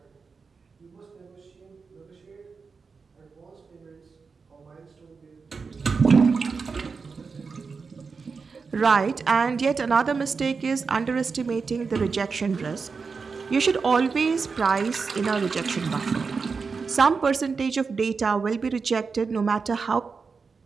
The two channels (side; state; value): left; quieter; 5.0 dB